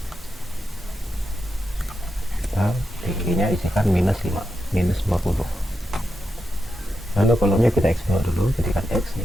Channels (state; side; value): normal; both; correlation 0.87